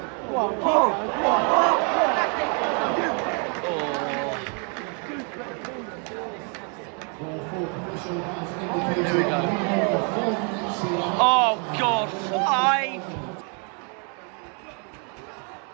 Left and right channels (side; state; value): left; quieter; 38.3 dB